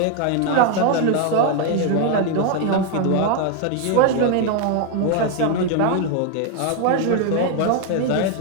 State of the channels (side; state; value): both; different; correlation 0.01